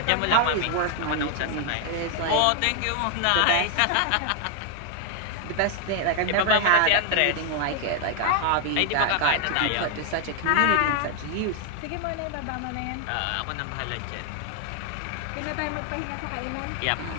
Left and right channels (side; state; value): both; different; correlation 0.00